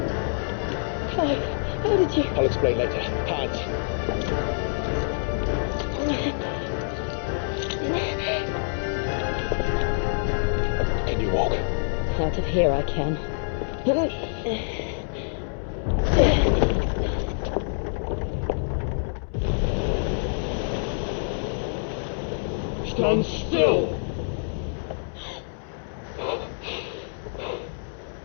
Clive, how did you... I'll explain later. Hands. Can you walk? Out of here I can. Stand still!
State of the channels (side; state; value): right; silent; digital silence